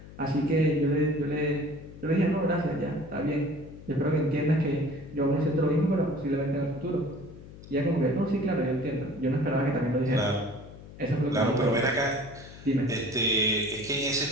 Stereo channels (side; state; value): left; noise; hum, 17 dB below the sound